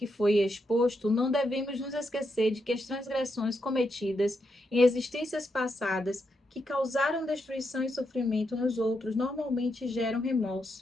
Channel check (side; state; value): both; normal; correlation 0.82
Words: foi exposto, não devemos nos esquecer de que as transgressões cometidas em existências passadas que causaram destruição e sofrimento nos outros normalmente geram